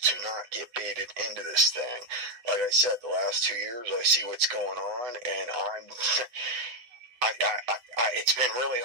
to not get baited into this thing. Like I said, the last 2 years, I see what's going on, and it's been really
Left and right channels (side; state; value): left; late; 7.9 ms